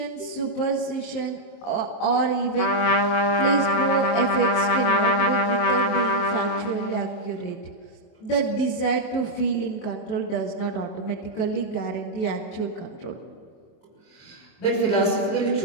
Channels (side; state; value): right; late; 24 ms